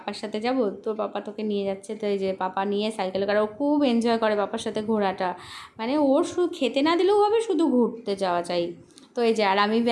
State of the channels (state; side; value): identical; both; correlation 1.00